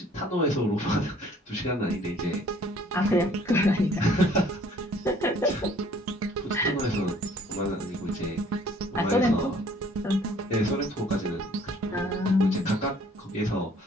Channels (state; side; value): normal; both; correlation 0.57